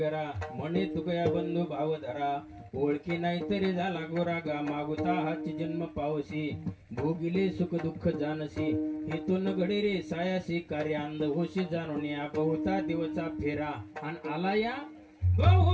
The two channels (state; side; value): identical; both; correlation 1.00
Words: म्हणे तुकया बंधू भाव धरा ओळखी नाही तरी झाला गोरा गा मागुता हाची जन्म पावसी भोगिले सुख दुःख जानसी हेतून घडी रे सायासी कार्य अंध होशी जाणून या बहुता दिवसा फेरा आणि आला या